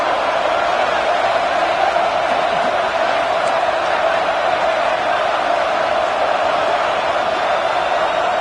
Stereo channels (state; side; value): identical; both; correlation 1.00